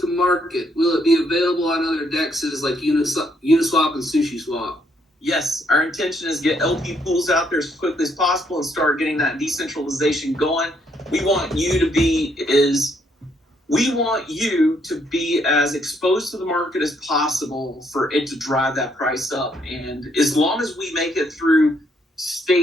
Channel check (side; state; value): both; normal; correlation 0.72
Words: to market, will it be available on other dexes like Uniswap and SushiSwap? Yes, our intention is to get LP pools out there as quickly as possible and start getting that decentralization going. We want you to be as exposed to the market as possible for it to drive that price up. And as long as we make it through